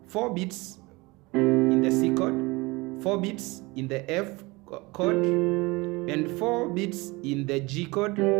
4 beats in the C chord, 4 beats in the F chord, and 4 beats in the G chord,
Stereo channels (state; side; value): quieter; left; 23.8 dB